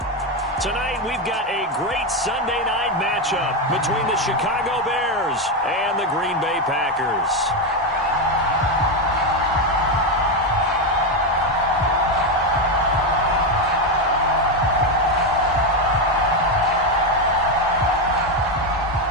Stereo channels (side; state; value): both; normal; correlation 0.08